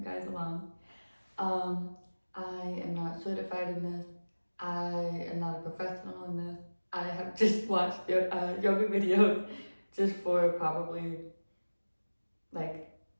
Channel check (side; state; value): both; inverted; correlation -1.00